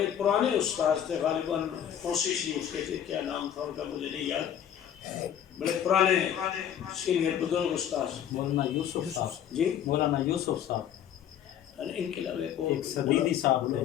پرانے استاذ تھے، غالباً فوسی شریف کے تھے، کیا نام تھا ان کا مجھے نہیں یاد، بڑے پرانے سینئر بزرگ استاذ، مولانا یوسف صاحب، جی مولانا یوسف صاحب، ان کے علاوہ ایک صدیقی صاحب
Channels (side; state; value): right; quieter; 9.7 dB